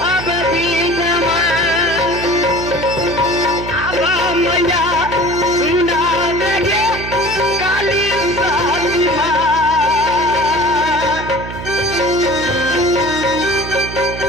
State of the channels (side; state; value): right; noise; hum, 9 dB below the sound